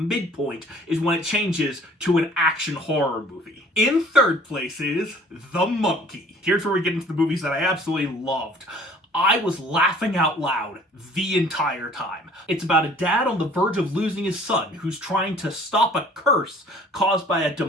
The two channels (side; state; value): both; normal; correlation 0.53